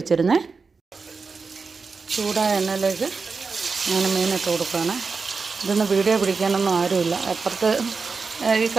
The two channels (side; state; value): left; quieter; 4.7 dB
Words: വെച്ചിരുന്നേ. ചൂടായ എണ്ണയിലേക്ക് അങ്ങനെ മീനിട്ട് കൊടുക്കുകയാണ്. ഇതൊന്നും വീഡിയോ പിടിക്കാനൊന്നും ആരുമില്ല. അപ്പുറത്ത് ഈ